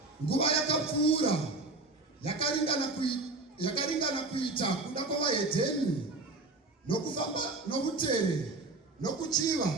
nguva yakapfuura yakaringana kuita kuda kwavahedheni nokufamba nokutere nokuchiva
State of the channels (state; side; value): quieter; left; 3.3 dB